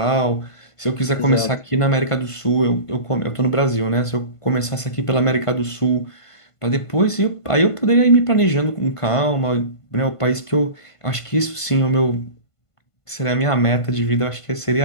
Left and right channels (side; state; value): right; late; 1.5 ms